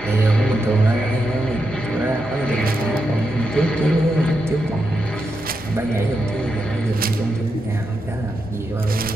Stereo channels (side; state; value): both; normal; correlation 0.85